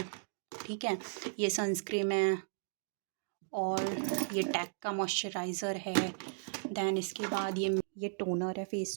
ठीक है। ये सनस्क्रीन है, और ये टैक का मॉइस्चराइज़र है। दैन इसके बाद ये टोनर है, फेस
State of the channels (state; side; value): silent; left; digital silence